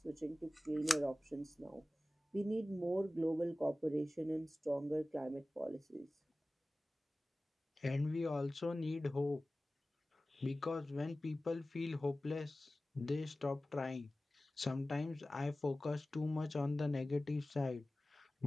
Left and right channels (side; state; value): both; normal; correlation 0.96